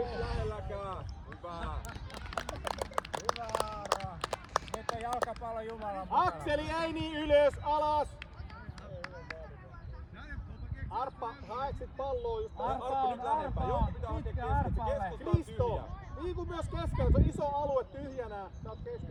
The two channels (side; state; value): both; identical; correlation 1.00